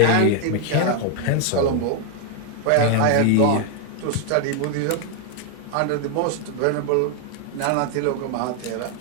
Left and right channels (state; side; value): different; both; correlation 0.00